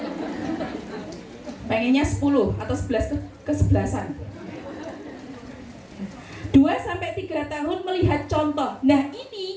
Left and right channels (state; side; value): identical; both; correlation 1.00